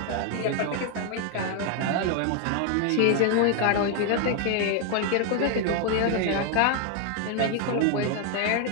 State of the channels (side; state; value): both; different; correlation 0.01